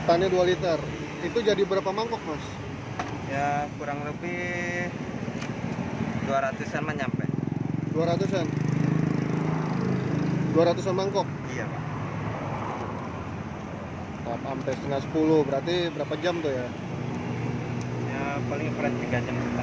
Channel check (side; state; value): both; identical; correlation 1.00